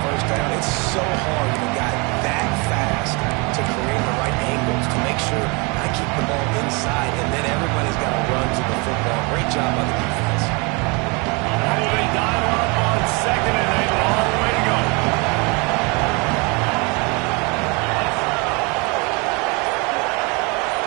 first down. It's so hard when a guy that fast to create the right angles to make sure I keep the ball inside, and then everybody's got to run to the football. Great job by the defense. Oh, they dial up on second and a long way to go.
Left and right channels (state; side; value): quieter; left; 29.6 dB